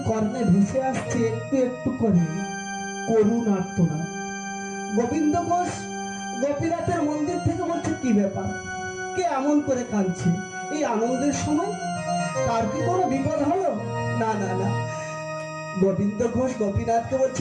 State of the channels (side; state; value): both; identical; correlation 1.00